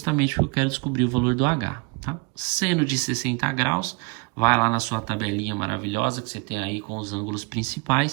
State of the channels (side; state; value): left; quieter; 30.2 dB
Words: porque eu quero descobrir o valor do H, tá? Seno de 60 graus, vai lá na sua tabelinha maravilhosa que você tem aí com os ângulos